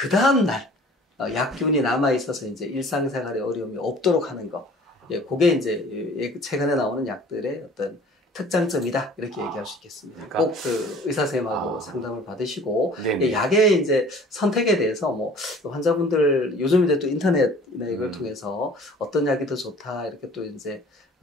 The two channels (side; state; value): both; normal; correlation 0.48